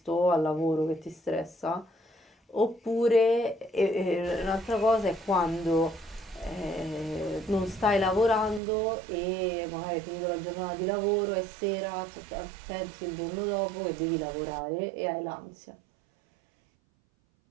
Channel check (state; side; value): drops out; left; at 8.6 s